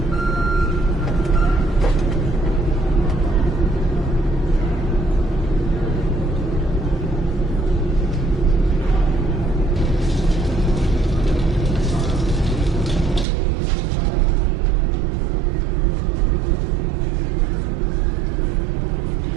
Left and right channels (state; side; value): drops out; left; at 13.2 s